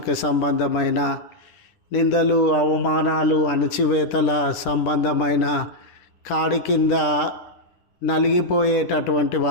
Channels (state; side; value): late; right; 10 ms